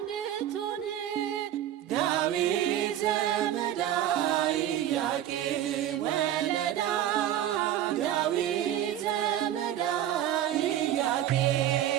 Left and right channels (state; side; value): quieter; left; 11.5 dB